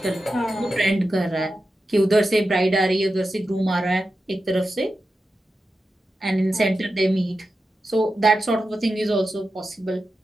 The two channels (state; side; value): normal; both; correlation 0.91